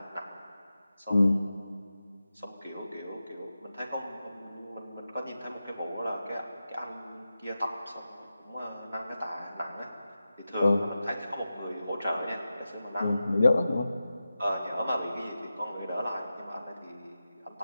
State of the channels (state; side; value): inverted; both; correlation -0.92